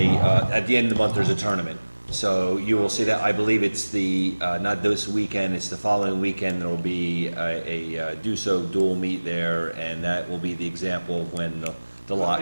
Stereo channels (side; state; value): both; inverted; correlation -1.00